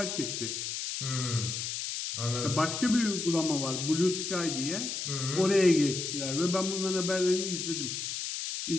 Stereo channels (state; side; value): noise; left; hiss, 4 dB below the sound